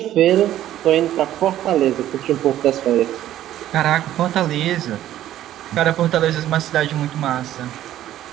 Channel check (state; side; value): quieter; left; 12.7 dB